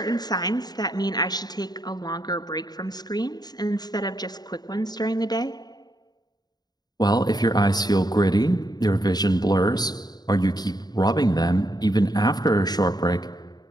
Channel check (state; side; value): late; right; 0.20 ms